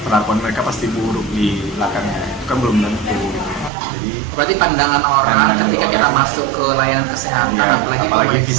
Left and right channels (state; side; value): drops out; left; at 3.7 s